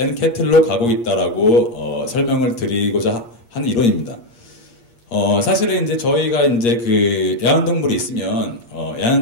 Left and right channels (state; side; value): late; right; 8.5 ms